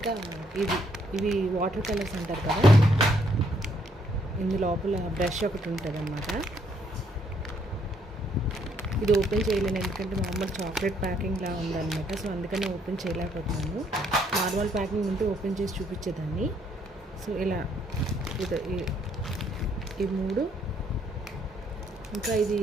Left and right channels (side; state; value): both; normal; correlation 0.69